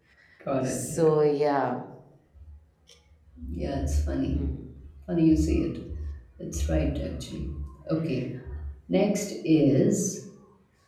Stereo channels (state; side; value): identical; both; correlation 1.00